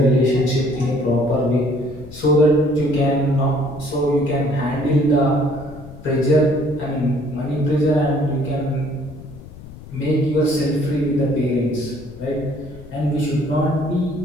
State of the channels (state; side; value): noise; left; rumble, 17 dB below the sound